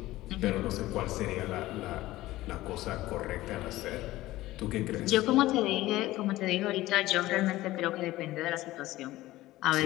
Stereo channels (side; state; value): right; quieter; 16.9 dB